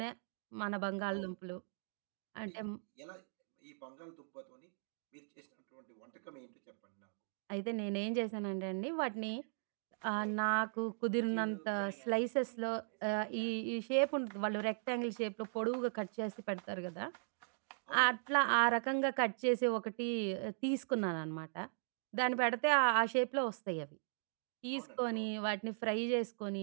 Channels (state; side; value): silent; left; digital silence